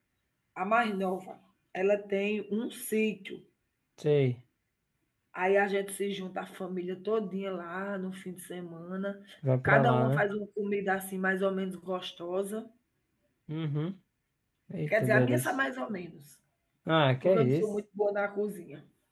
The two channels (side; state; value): both; identical; correlation 1.00